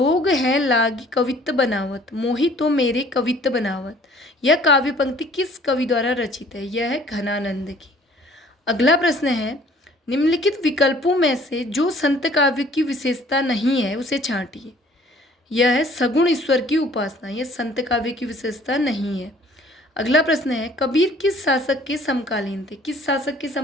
है लागी कवित्त बनावत, मोहि तो मेरे कवित्त बनावत। यह काव्य पंक्ति किस कवि द्वारा रचित है? यह है घनानंद की। अगला प्रश्न है, निम्नलिखित विकल्पों में से जो संत काव्य की विशेषता नहीं है उसे छांटिए। यह है सगुण ईश्वर की उपासना, यह संत काव्य की विशेषता नहीं है। अगला प्रश्न है, कबीर किस शासक के समकालीन थे? किस शासक के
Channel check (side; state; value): both; normal; correlation 0.54